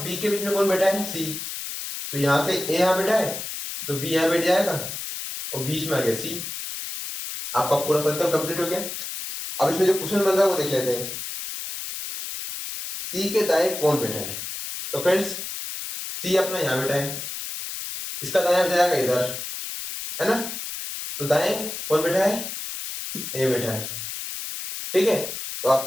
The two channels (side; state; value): left; noise; hiss, 7 dB below the sound